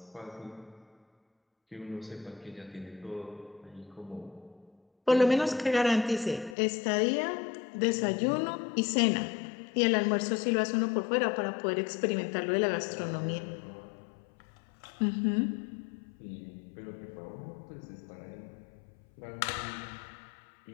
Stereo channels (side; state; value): right; drops out; at 6.6 s